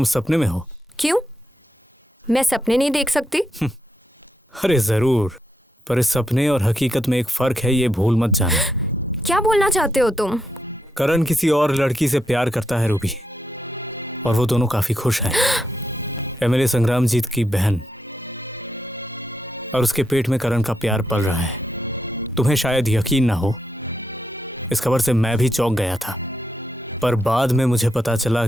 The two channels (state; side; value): normal; both; correlation 0.81